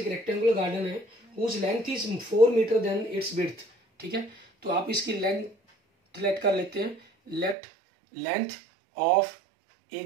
रेक्टेंगुलर गार्डन है whose length is 4 metre than its width, ठीक है। तो आप इसकी लेंथ लेट कर लेते हैं, late length of A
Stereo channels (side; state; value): left; drops out; at 7.6 s